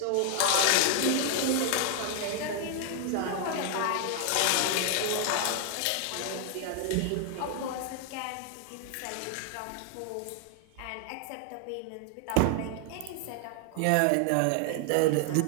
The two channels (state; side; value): different; both; correlation 0.00